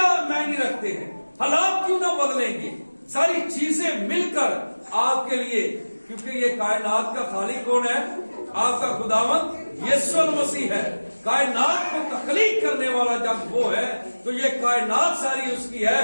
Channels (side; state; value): both; inverted; correlation -1.00